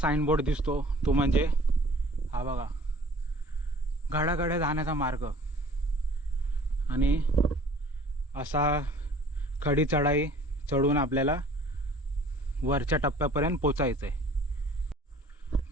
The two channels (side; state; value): both; normal; correlation 0.51